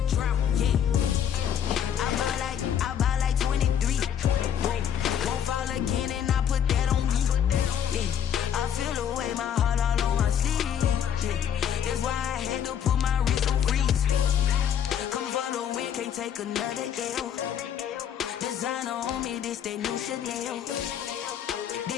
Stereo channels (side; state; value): right; quieter; 9.0 dB